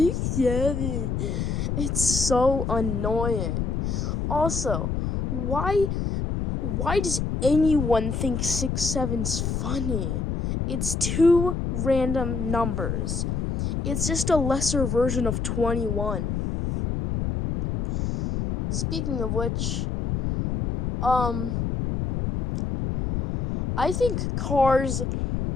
6'7". It's so annoying. Also, why does anyone think 6'7's funny? It's two random numbers. It's just a lesser version of 21. Speaking of which, I think Cars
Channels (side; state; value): left; noise; rumble, 1 dB below the sound